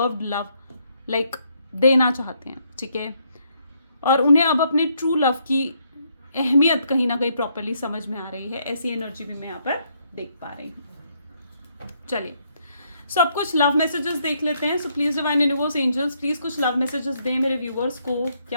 लव लाइक देना चाहते हैं, ठीक है। और उन्हें अब अपनी ट्रू लव की अहमियत कहीं ना कहीं प्रॉपरली समझ में आ रही है। ऐसी एनर्जी भी मैं यहाँ पर देख पा रही हूँ। चलिए, सो अब कुछ लव मैसेजेस देख लेते हैं। So please divine universe angels, please कुछ लव मैसेजेस दें मेरे व्यूअर्स को।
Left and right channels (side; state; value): both; inverted; correlation -0.73